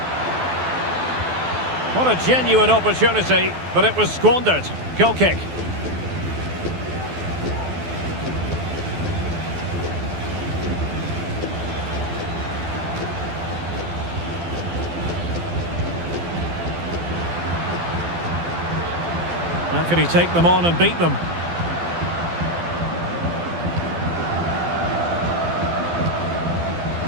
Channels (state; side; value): late; left; 12 ms